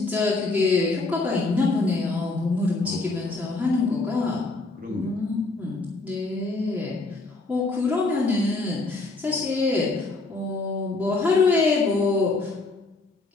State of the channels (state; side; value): quieter; right; 3.4 dB